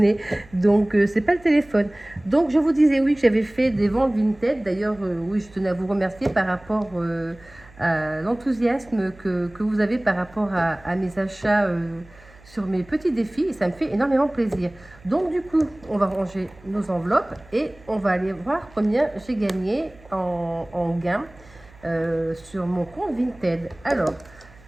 donc c'est pas le téléphone. Donc je vous disais oui que j'avais fait des ventes Vinted. D'ailleurs, oui, je tenais à vous remercier par rapport à l'enthousiasme que vous avez par rapport à mes achats sur mes petits défis, et ça me fait énormément plaisir. Donc du coup, on va ranger nos enveloppes et on va aller voir combien j'ai gagné en gain sur mon compte Vinted. Alors,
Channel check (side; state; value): right; noise; hum, 25 dB below the sound